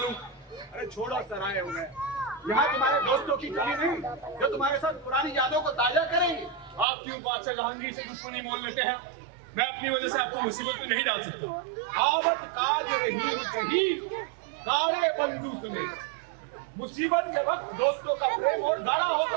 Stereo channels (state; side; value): drops out; left; at 6.9 s